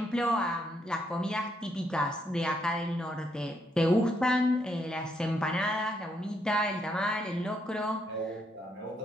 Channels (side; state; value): both; normal; correlation 0.75